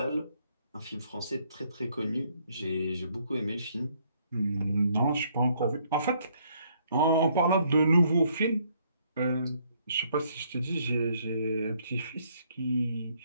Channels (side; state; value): both; inverted; correlation -0.68